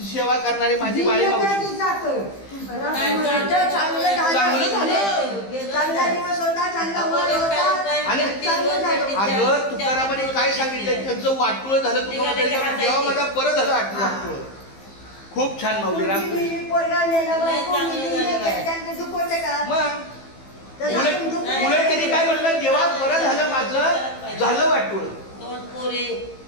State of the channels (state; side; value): late; right; 15 ms